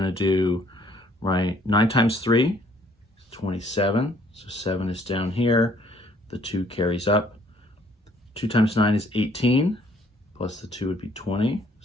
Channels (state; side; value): normal; both; correlation 0.62